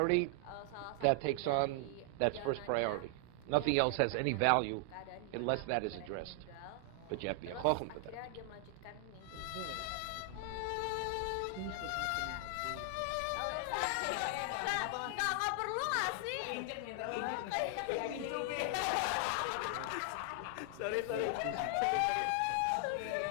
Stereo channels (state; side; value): different; both; correlation 0.00